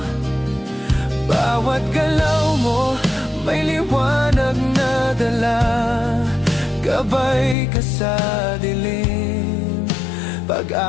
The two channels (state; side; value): drops out; right; at 7.6 s